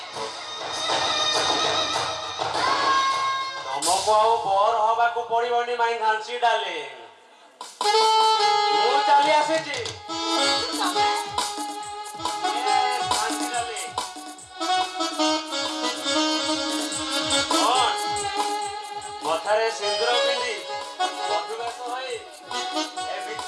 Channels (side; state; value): both; identical; correlation 1.00